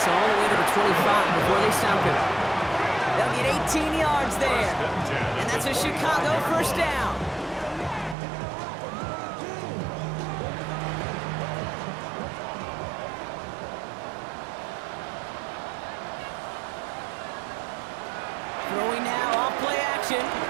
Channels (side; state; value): left; drops out; at 8.2 s